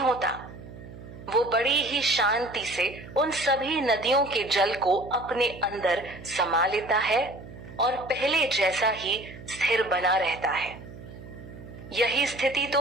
होता। वो बड़ी ही शांति से उन सभी नदियों के जल को अपने अंदर समा लेता है और पहले जैसा ही स्थिर बना रहता है। यही स्थिति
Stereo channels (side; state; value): right; noise; hum, 15 dB below the sound